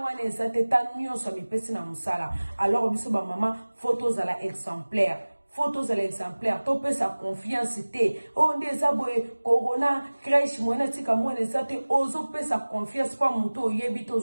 ne zate ta nyonso mipesi na musala. Alors biso ba mama photos à la exemplaire. Photos à l'exemplaire, topé sa confiance te. On des aboye corona crèche moena tika moena zate ozo pe sa confiance pa muto yebite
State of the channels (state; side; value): inverted; both; correlation -1.00